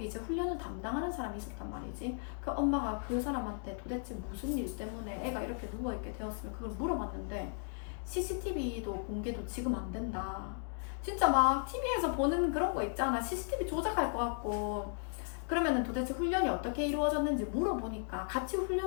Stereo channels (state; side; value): silent; right; 54 dB below the other